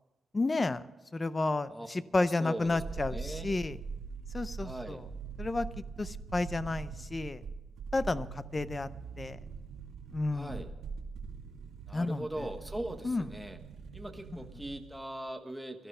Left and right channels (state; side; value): normal; both; correlation 0.94